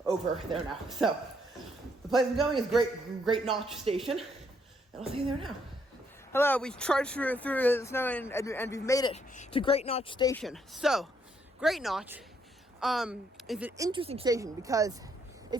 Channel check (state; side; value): normal; both; correlation 0.72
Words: over there now. So the place I'm going is Great Notch Station, and I'll see you there now. Hello, we trudged through the snow and we've made it to Great Notch Station. So, Great Notch is an interesting station because